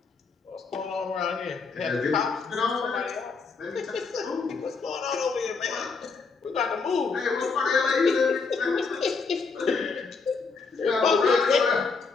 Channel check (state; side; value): quieter; right; 4.7 dB